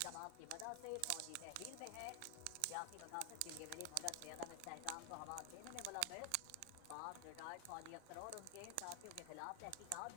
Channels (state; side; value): different; both; correlation 0.00